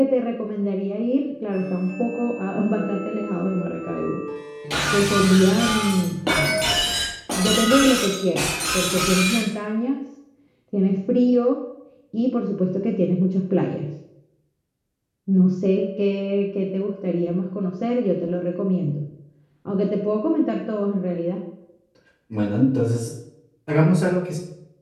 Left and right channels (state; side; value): identical; both; correlation 1.00